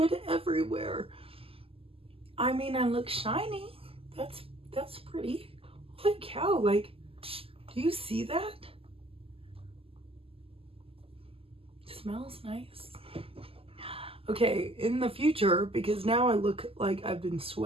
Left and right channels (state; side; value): late; left; 0.27 ms